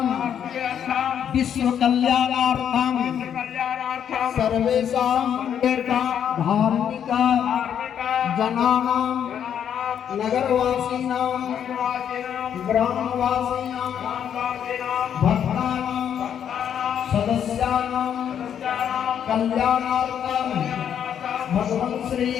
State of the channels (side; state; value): right; quieter; 8.9 dB